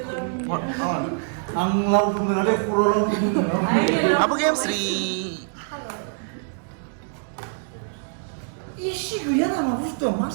आं लावदुम मोनाखै खर' लावदुम आबो गेमस्रि इसे गैया नामा बुस्थुआ मा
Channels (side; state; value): left; silent; digital silence